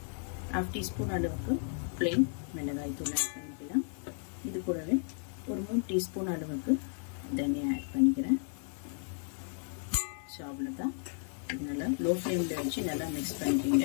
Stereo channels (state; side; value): silent; right; 55 dB below the other